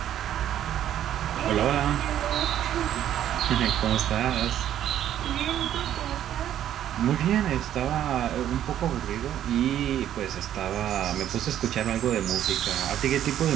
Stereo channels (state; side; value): quieter; left; 11.1 dB